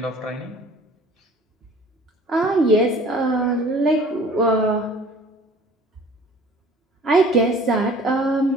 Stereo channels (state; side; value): normal; both; correlation 0.49